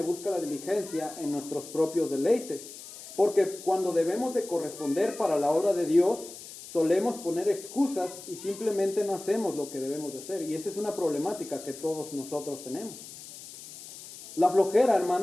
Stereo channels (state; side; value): noise; left; hiss, 15 dB below the sound